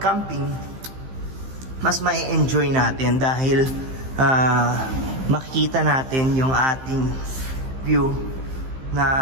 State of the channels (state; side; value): late; left; 15 ms